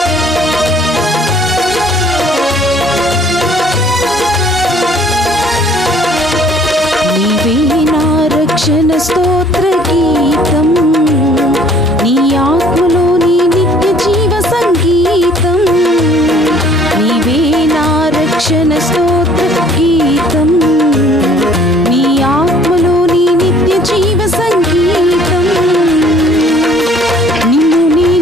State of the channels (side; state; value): both; normal; correlation 0.57